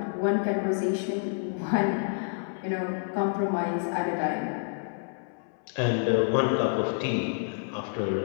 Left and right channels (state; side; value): silent; right; 59 dB below the other